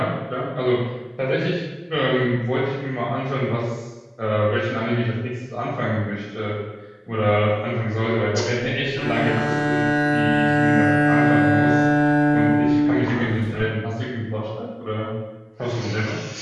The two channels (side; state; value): both; identical; correlation 1.00